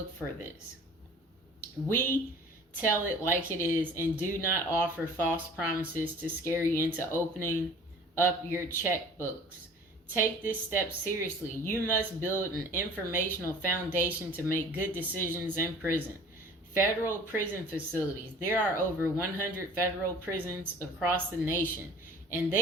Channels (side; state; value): both; normal; correlation 0.46